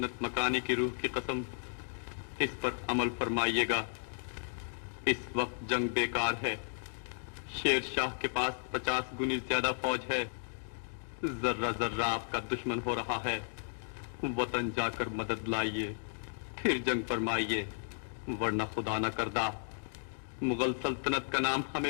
मकानी की रूह की कसम, इस पर अमल फरमाइएगा। इस वक्त जंग बेकार है। शेर शाह के पास 50 गुनी ज्यादा फौज है। जर्रा जर्रा आपका दुश्मन हो रहा है। वतन जाकर मदद लाइए, फिर जंग फरमाइए, वरना खुदा न करदा मुगल सल्तनत का नाम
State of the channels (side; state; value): right; silent; digital silence